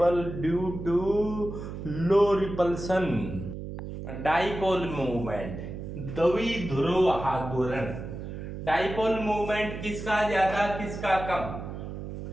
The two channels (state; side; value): noise; right; hum, 8 dB below the sound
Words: due to low repulsion. Dipole movement, द्विध्रुव आघूर्ण, डाइपोल मूवमेंट किसका ज्यादा किसका कम,